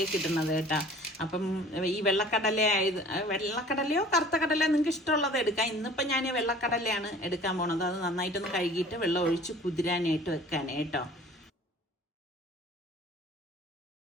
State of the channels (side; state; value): both; normal; correlation 0.48